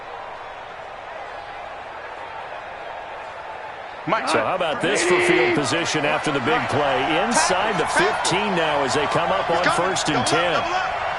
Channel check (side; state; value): both; identical; correlation 1.00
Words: So how about this for field position after the big play? Inside the 15 now as they come up on 1st and 10.